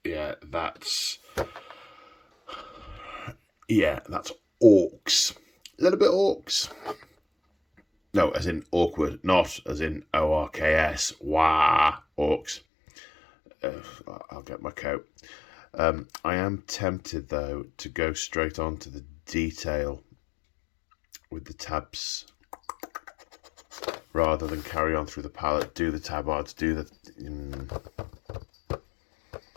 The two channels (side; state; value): right; drops out; at 12.6 s